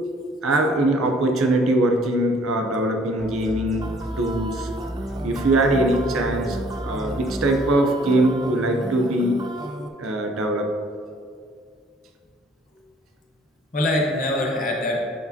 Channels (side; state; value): both; normal; correlation 0.58